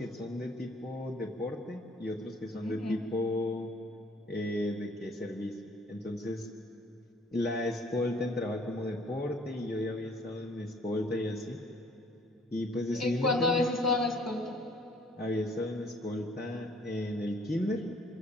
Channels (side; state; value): both; normal; correlation 0.58